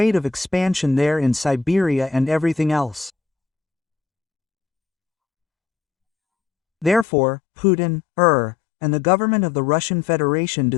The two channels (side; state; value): right; drops out; at 7.1 s